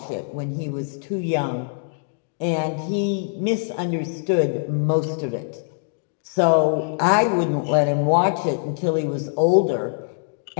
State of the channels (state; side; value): silent; right; digital silence